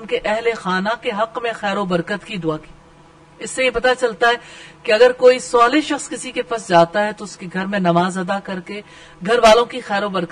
کے اہل خانہ کے حق میں خیر و برکت کی دعا کی. اس سے یہ پتا چلتا ہے کہ اگر کوئی صالح شخص کسی کے پاس جاتا ہے تو اس کے گھر میں نماز ادا کر کے گھر والوں کی خیر و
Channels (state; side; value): identical; both; correlation 1.00